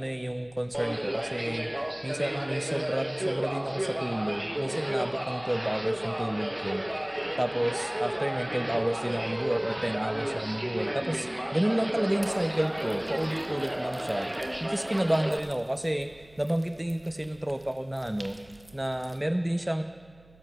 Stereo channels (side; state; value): right; noise; hum, 27 dB below the sound